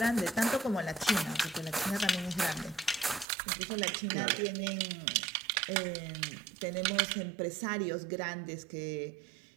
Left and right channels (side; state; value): left; drops out; at 3.2 s